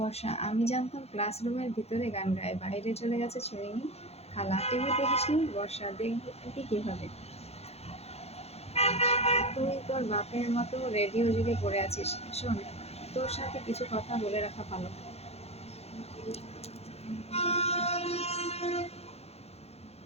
আমি জানতাম ক্লাসরুমের ভিতরে গান গায়, বাইরে চলে গেছে শুনিনি। খালা, টিভি দেখিসনি? বর্ষা, দেখবি কিভাবে, তুই তোর বাপের মতো রেডিও যুগে পড়ে আছিস। শোন, তোর সাথে কিছু কথা বলে রাখা ভালো।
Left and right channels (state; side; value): late; right; 0.30 ms